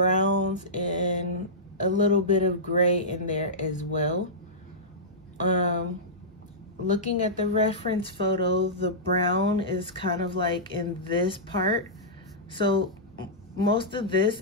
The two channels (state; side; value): normal; both; correlation -0.15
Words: and a little bit of gray in there as well. Looking at the reference photo, the brown is kind of like in this part. So most of this